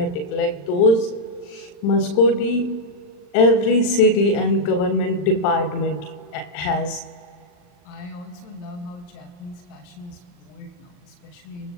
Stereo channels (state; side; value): late; right; 40 ms